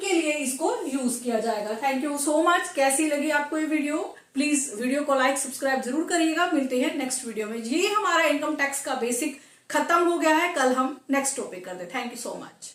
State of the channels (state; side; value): identical; both; correlation 1.00